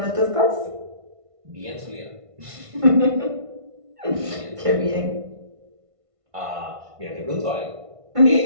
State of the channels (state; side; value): late; left; 1.5 ms